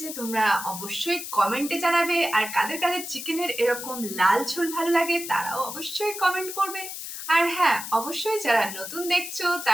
তোমরা অবশ্যই কমেন্টে জানাবে, আর কাদের কাদের চিকেনের এরকম লাল ঝোল ভালো লাগে তারাও অবশ্যই কমেন্ট করবে। আর হ্যাঁ, অবশ্যই যারা নতুন দেখছো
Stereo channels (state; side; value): noise; left; hiss, 8 dB below the sound